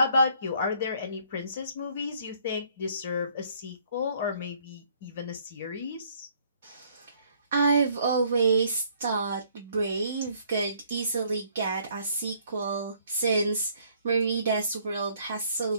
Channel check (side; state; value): both; inverted; correlation -0.63